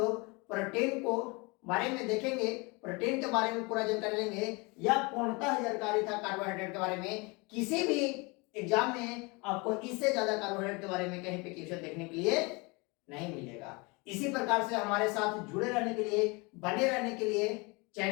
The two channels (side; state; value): right; quieter; 27.4 dB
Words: प्रोटीन को बारे में देखेंगे, प्रोटीन के बारे में पूरा जानकारी लेंगे। यह पूर्णतः जानकारी था कार्बोहाइड्रेट के बारे में। किसी भी एग्जाम में आपको इससे ज्यादा कार्बोहाइड्रेट के बारे में कहीं पे क्वेश्चन देखने के लिए नहीं मिलेगा। इसी प्रकार से हमारे साथ जुड़े रहने के लिए, बने रहने के लिए